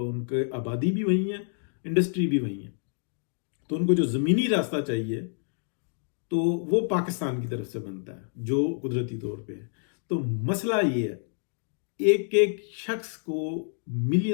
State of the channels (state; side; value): silent; right; digital silence